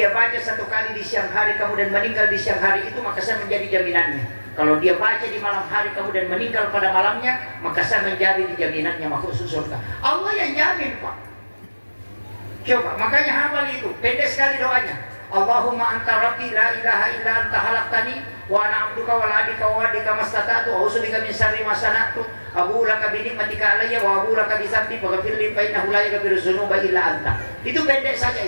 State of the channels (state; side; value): inverted; both; correlation -1.00